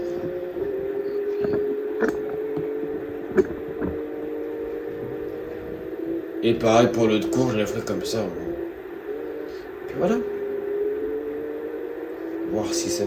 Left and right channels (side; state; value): both; identical; correlation 1.00